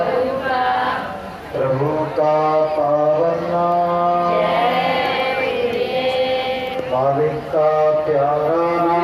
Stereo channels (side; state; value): both; identical; correlation 1.00